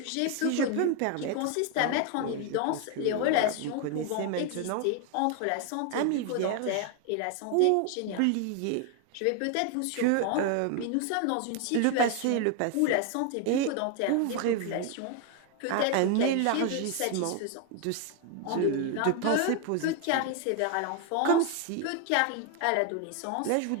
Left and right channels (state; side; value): different; both; correlation 0.01